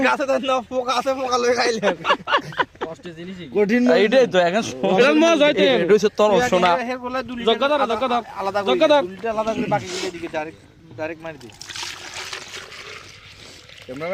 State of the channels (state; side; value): identical; both; correlation 1.00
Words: গাছে তো না পোকা আছে পোকা লই খাইলে কষ্টে জিনিস কঠিন এইটাই তো এখন মজা হইতে এটা হচ্ছে তরল সোনা আলাদা করে বাকি দিকে ডাইরেক্ট মারি দি